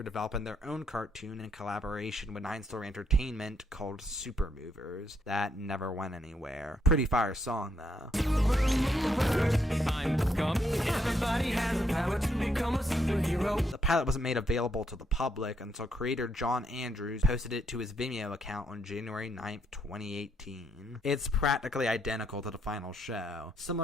developing their own cartoon in collaboration with 9 Story Entertainment called Super Movers. That never went anywhere. Pretty fire song though. Everybody has the power to become a superhero. The pilot wasn't made available to the public until creator John Andrews posted it to his Vimeo account on January 9th, 2018. It's practically identical to the final show.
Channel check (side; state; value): both; normal; correlation 0.75